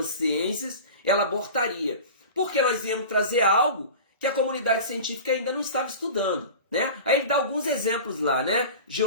ciências, ela abortaria. Porque nós íamos trazer algo que a comunidade científica ainda não estava estudando, né? Aí ele dá alguns exemplos lá, né?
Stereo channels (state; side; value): inverted; both; correlation -0.34